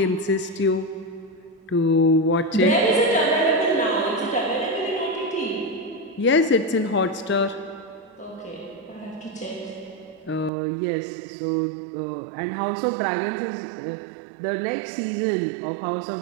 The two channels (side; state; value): left; drops out; at 10.5 s